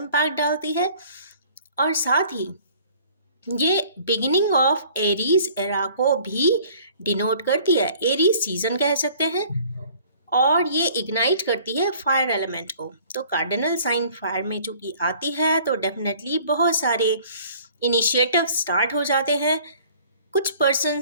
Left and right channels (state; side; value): inverted; both; correlation -0.53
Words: डालती है। और साथ ही ये बिगिनिंग ऑफ एरीज एरा को भी डिनोट करती है। एरीज सीजन कह सकते हैं और ये इग्नाइट करती है फायर एलिमेंट को। तो कार्डिनल साइन फायर में चूंकि आती है तो डेफिनेटली बहुत सारे इनिशिएटिव स्टार्ट हो जाते हैं। कुछ